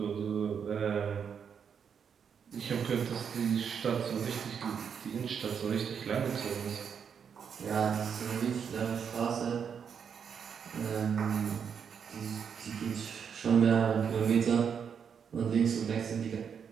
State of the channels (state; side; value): quieter; left; 7.1 dB